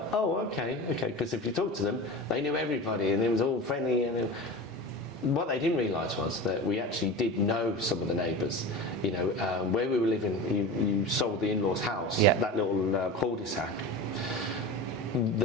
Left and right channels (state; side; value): normal; both; correlation 0.30